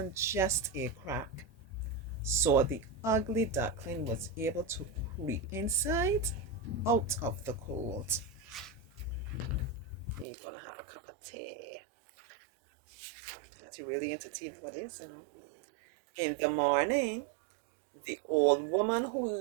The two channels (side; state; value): left; drops out; at 10.2 s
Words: just a crack, so the ugly duckling was able to creep inside out of the cold. You're gonna have a cup of tea. That's really into tea, what is, you know. In the morning, the old woman who